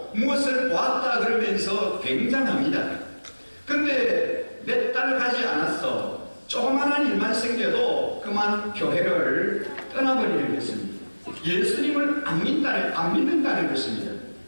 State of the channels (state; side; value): inverted; both; correlation -1.00